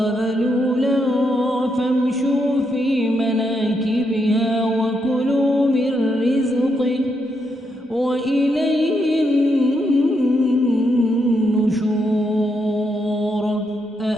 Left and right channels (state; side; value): normal; both; correlation 0.80